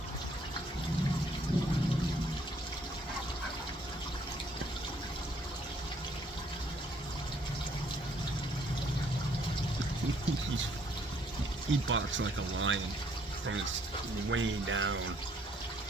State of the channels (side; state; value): both; normal; correlation 0.66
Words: He barks like a lion from his way down